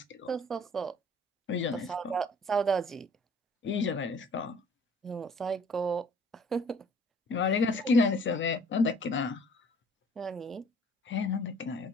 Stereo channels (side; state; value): both; normal; correlation 0.54